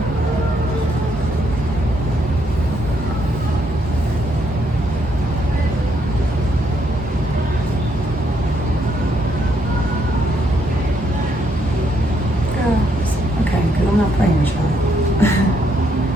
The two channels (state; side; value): normal; both; correlation 0.74